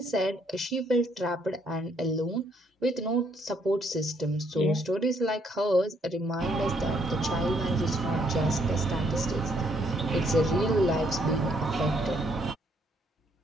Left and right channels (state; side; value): normal; both; correlation 0.70